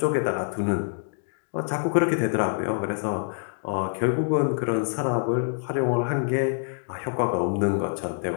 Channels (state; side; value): silent; right; digital silence